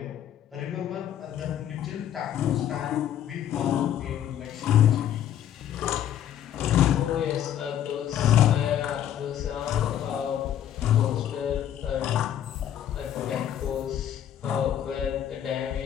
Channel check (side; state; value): right; quieter; 10.5 dB